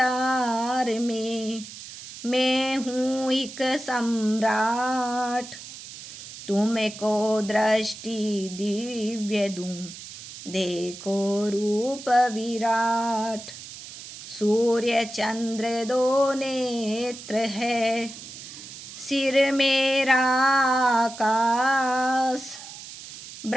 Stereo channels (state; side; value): noise; right; hiss, 14 dB below the sound